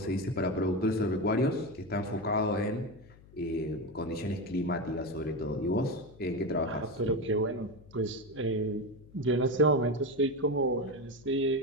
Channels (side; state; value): left; noise; hum, 23 dB below the sound